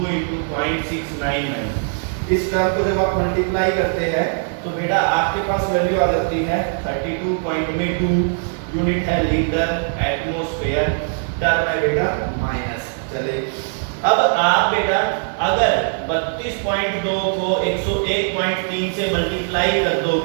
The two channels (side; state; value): left; silent; 65 dB below the other